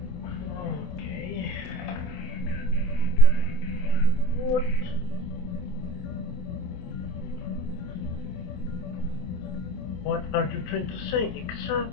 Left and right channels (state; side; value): late; right; 28 ms